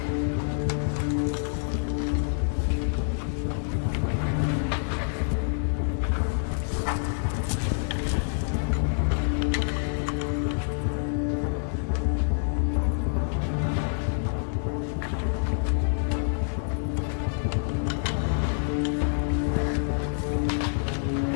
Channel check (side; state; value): right; silent; digital silence